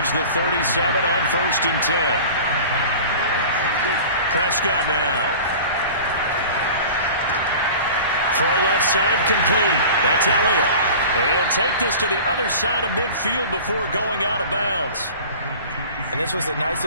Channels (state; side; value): inverted; both; correlation -0.39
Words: the 37 on 1st and 10. Prescott now. Throw left side complete. That's Elliott. And he'll take this to the other side of midfield before going out of bounds. And this was a nice